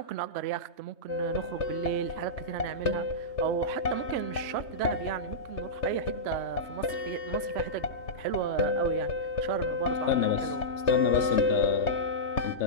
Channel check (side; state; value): right; late; 3.3 ms